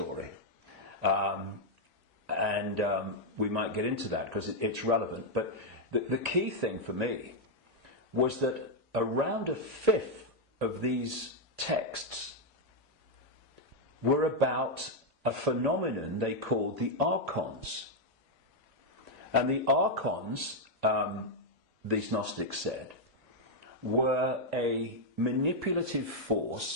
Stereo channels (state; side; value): late; right; 1.3 ms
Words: And we might get into that because it's relevant. But the key thing for me was that around a fifth of these texts were about a phenomenon they called the archons. And the archons, these Gnostics said, were a manipulative